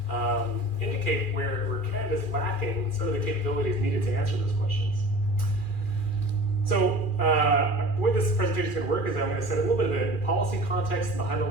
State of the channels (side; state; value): right; late; 2.4 ms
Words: indicate where Canada's lacking some of the capabilities needed to answer those questions. So the way this presentation is going to work is I'm going to set a little bit of the policy context and the